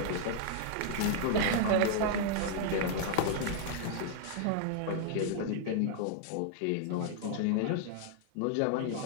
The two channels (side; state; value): both; different; correlation -0.01